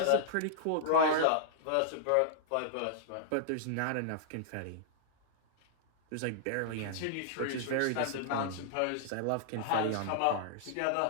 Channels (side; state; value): both; different; correlation -0.01